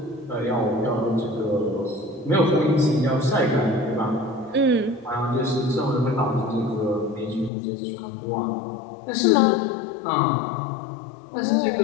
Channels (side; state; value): right; drops out; at 7.5 s